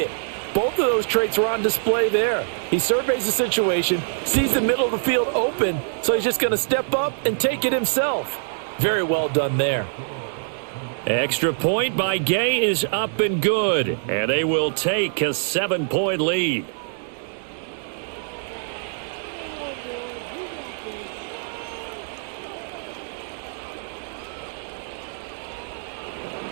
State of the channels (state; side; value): silent; left; digital silence